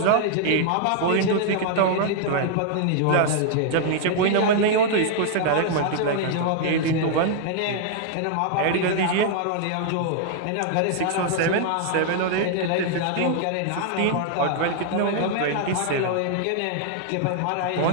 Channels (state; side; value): different; both; correlation 0.00